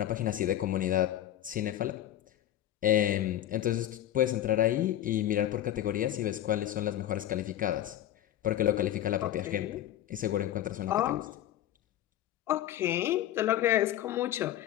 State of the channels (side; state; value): right; quieter; 12.5 dB